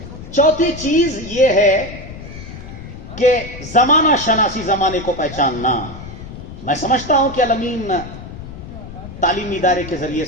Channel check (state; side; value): noise; left; rumble, 12 dB below the sound